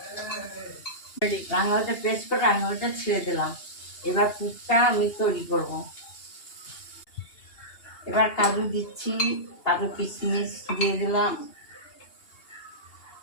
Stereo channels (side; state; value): right; late; 2.8 ms